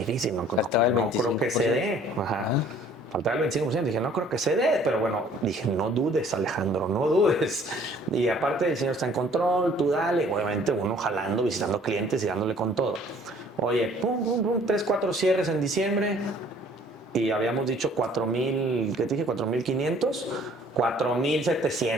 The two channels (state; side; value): normal; both; correlation 0.56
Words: no creo que se dé. Ajá. Faltaba el 25%, dije, no creo que se dé, pero bueno, dije, no dudes, Alejandro, no dudes. Y aparte el Señor está en control, tú dale, obviamente uno jalando, visitando clientes y dándole con todo. Oye, pum, 3, 4 cierres en diciembre y habíamos dicho 4.000, ¿qué te dije? 4.500,